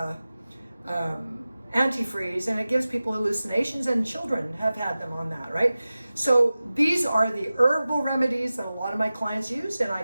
antifreeze, and it gives people hallucinations, and children have had them on that, right? So these are the herbal remedies that a lot of my clients use, and I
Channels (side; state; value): both; inverted; correlation -0.96